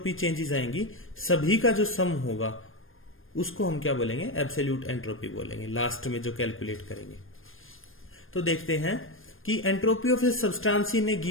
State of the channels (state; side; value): late; right; 0.59 ms